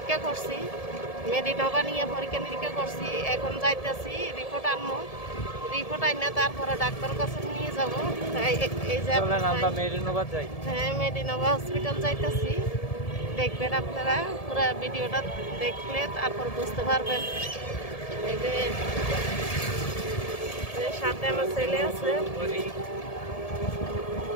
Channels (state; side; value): late; right; 1.7 ms